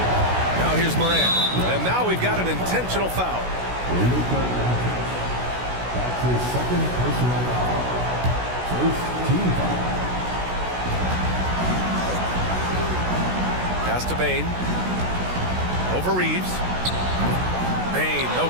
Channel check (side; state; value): left; late; 16 ms